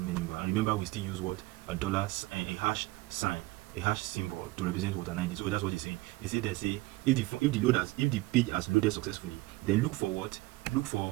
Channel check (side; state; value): left; quieter; 20.5 dB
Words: menu bar, and remember we still use what, a hash sign, a hash symbol to represent what, an ID. So that's what he's saying. They say if the page has loaded successfully, then look for